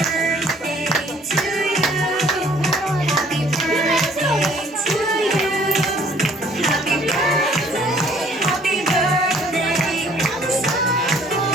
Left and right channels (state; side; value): normal; both; correlation 0.58